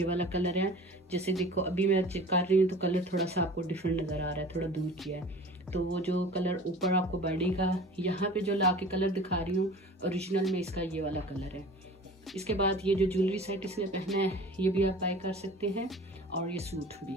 वाला कलर है। जैसे देखो अभी मैं चेक कर रही हूँ तो कलर थोड़ा सा आपको डिफरेंट नज़र आ रहा है, थोड़ा दूर किया है। तो वो जो कलर ऊपर आपको बॉडी का यहाँ पे जो ला के कलर दिखा रही हूँ ओरिजिनल में, इसका ये वाला कलर है। इसके बाद ये जो ज्वेलरी सेट इसने पहना है ये भी आप बाय कर सकते हैं और ये सूट भी,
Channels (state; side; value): normal; both; correlation 0.41